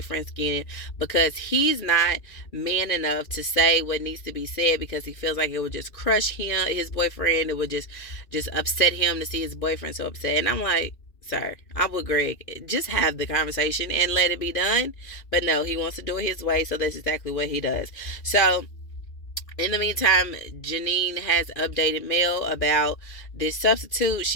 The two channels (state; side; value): late; right; 2.5 ms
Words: skin, because he's not man enough to say what needs to be said because he feels like it would just crush him, his boyfriend. It would just upset him to see his boyfriend so upset. And I'm like, sir, I'm with Greg. Just have the conversation and let it be done. But no, he wants to do it his way, so that's exactly what he does. So in the meantime, Janine has updated Mel about this substitute.